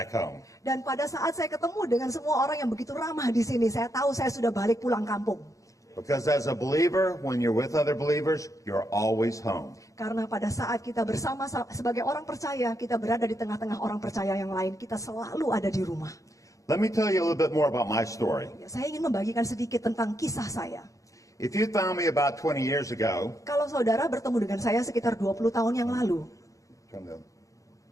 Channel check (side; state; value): right; late; 0.16 ms